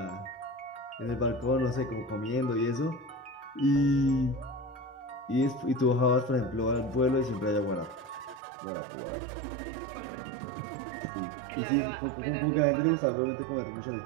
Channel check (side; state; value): left; drops out; at 8.4 s